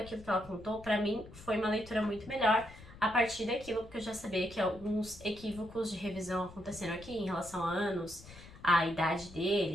que ela contou, pra mim foi uma leitura muito melhor a partir daquilo, porque eu já sabia que alguns equívocos de revisão aconteceram aqui em relação a anos, a idade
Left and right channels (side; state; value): left; noise; rumble, 18 dB below the sound